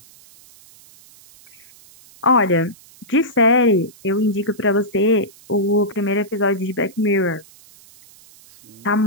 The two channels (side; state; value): right; noise; hiss, 25 dB below the sound